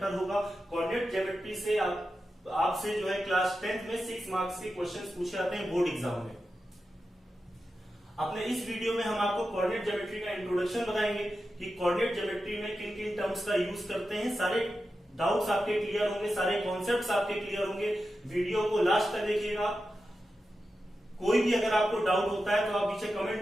होगा। कोऑर्डिनेट ज्योमेट्री से आपसे जो है क्लास 10th में 6 मार्क्स के क्वेश्चंस पूछे जाते हैं बोर्ड एग्जाम में। अपने इस वीडियो में हम आपको कोऑर्डिनेट ज्योमेट्री का इंट्रोडक्शन बताएंगे कि कोऑर्डिनेट ज्योमेट्री में किन किन टर्म्स का यूज करते हैं। सारे डाउट्स आपके क्लियर होंगे, सारे कॉन्सेप्ट्स आपके क्लियर होंगे। वीडियो को लास्ट तक देखिएगा। कोई भी अगर आपको डाउट होता है तो आप नीचे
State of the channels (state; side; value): normal; both; correlation 0.91